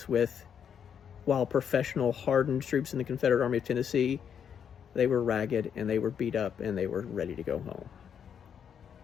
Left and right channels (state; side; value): quieter; right; 7.9 dB